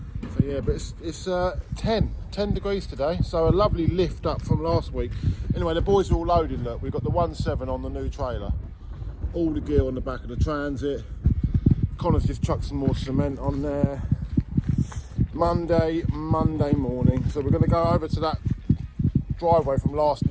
So yeah, but it's 10 degrees today, so a lovely lift up from last week. Anyway, the boys are all loaded. Look, we've got the 1.7 on the new trailer, all the gear on the back of the Transit. Connor's just chucked some more cement on there. Monday morning, so we're going to go over to that driveway from last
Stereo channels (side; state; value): both; identical; correlation 1.00